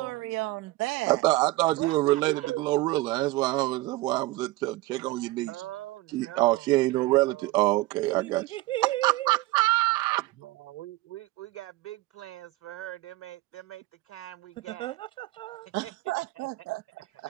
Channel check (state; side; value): quieter; left; 19.4 dB